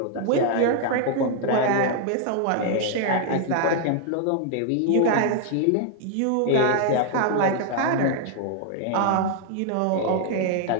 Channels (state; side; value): different; both; correlation 0.00